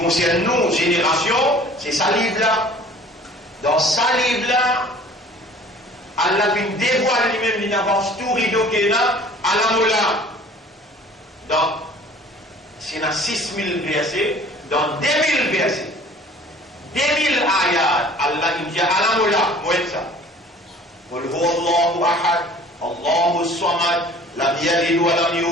nous, génération, c'est sa livre-là. Dans sa livre-là, Allah vient dévoiler lui-même, il avance tout rideau qu'il a à la moula. Donc, c'est dans 6000 versets, dans 2000 versets. 2000 ayat, Allah dit à la moula, moi ça. Qul huwa Allahu ahad, Allahu samad, lam yalid wa lam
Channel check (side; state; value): both; normal; correlation 0.49